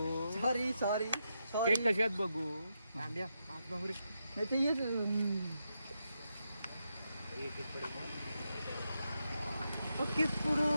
सॉरी केक कसे आहेत बघू नाही ते येत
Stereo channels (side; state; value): both; inverted; correlation -0.84